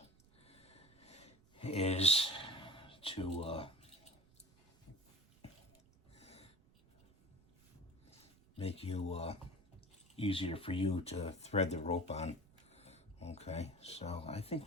is to make you easier for you to thread the rope on. Okay, so I think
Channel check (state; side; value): noise; right; rumble, 29 dB below the sound